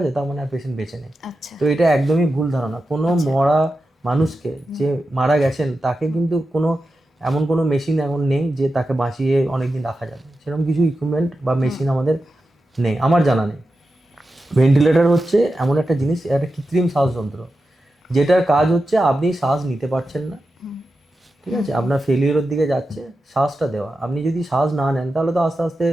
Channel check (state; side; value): normal; both; correlation 0.91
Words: তার মানে আর পেশেন্ট বেঁচে নেই। তো এটা একদমই ভুল ধারণা। কোনো মরা মানুষকে, যে মারা গেছেন, তাকে কিন্তু কোনো এমন কোনো মেশিন এখন নেই যে তাকে বাঁচিয়ে অনেকদিন রাখা যাবে, সেরকম কিছু ইকুইপমেন্ট বা মেশিন আমাদের নেই, আমার জানা নেই। ভেন্টিলেটর হচ্ছে এমন একটা জিনিস, একটা কৃত্রিম শ্বাসযন্ত্র, যেটার কাজ হচ্ছে আপনি শ্বাস নিতে পারছেন না, ঠিক আছে, আপনার ফেলিওরের দিকে যাচ্ছে, শ্বাসটা দেওয়া। আপনি যদি শ্বাস না নেন তাহলে তো আস্তে আস্তে